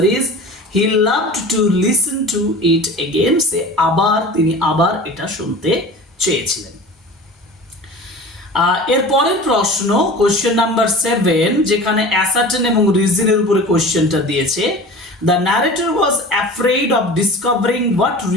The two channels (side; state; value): both; normal; correlation 0.37